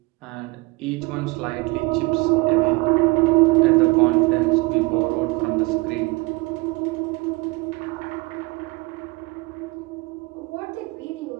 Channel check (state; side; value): quieter; left; 24.9 dB